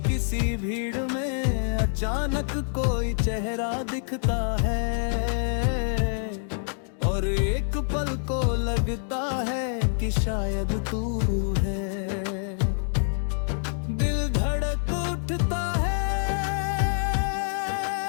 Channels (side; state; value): right; silent; digital silence